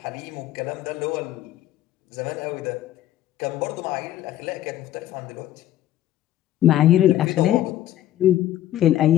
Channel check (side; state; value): right; quieter; 13.0 dB